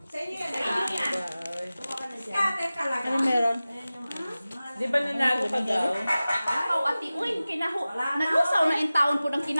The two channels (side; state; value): both; inverted; correlation -0.97